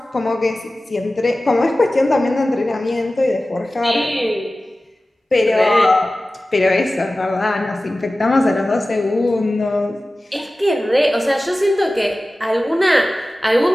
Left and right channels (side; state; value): both; normal; correlation 0.96